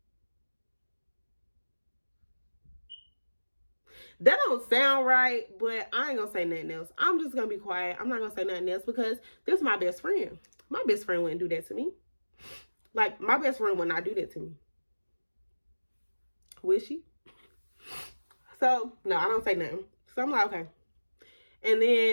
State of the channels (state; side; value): inverted; both; correlation -1.00